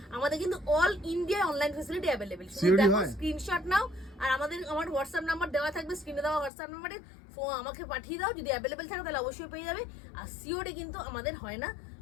আমাদের কিন্তু all India online facility available. COD দেখো হয়? স্ক্রিনশট নাও, আর আমার হোয়াটসঅ্যাপ নাম্বার দেওয়া থাকবে স্ক্রিনে, দেওয়া হোয়াটসঅ্যাপ নাম্বারে আমাকে পাঠিয়ে দাও, যদি অ্যাভেলেবেল থাকে তাহলে অবশ্যই পেয়ে যাবে। আর সিওডি কিন্তু আমাদের হয় না,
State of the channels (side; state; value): right; drops out; at 6.5 s